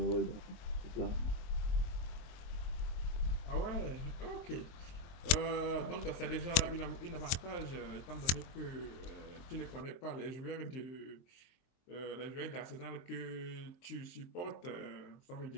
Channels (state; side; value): late; right; 23 ms